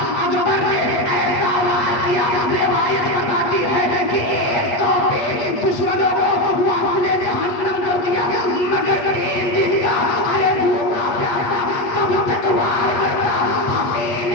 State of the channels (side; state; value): right; late; 8.5 ms